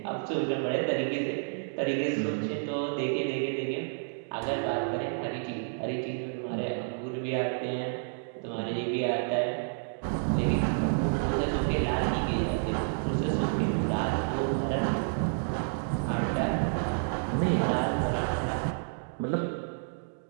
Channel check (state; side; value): silent; left; digital silence